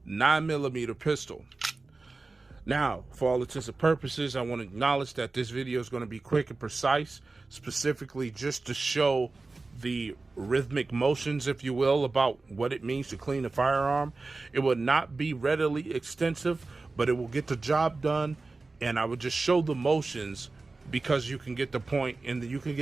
9mm pistol. Now, for all intents and purposes, I want to acknowledge that this video is going to be quick and precise, specifically just to show the rhythmic motions, if you will, about what it means to clean a firearm. It will not be readily extensive, but it will get the job done, and I would just show the motions because you can get the point, and you can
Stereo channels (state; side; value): quieter; left; 3.6 dB